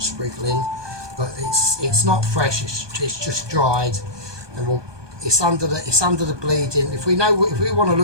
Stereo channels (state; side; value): late; left; 1.2 ms